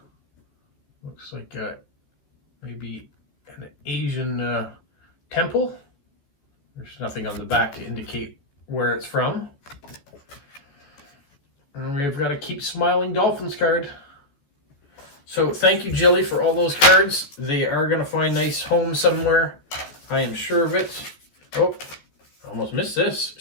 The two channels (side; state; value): right; late; 14 ms